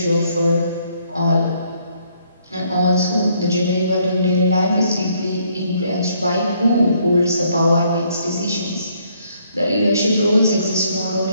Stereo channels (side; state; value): both; inverted; correlation -0.68